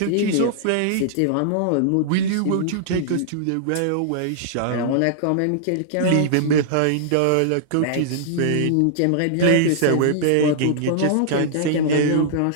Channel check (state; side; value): different; both; correlation -0.01